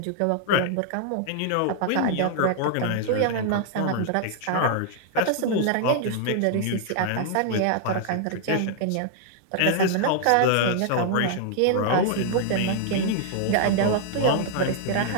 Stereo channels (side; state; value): both; different; correlation -0.01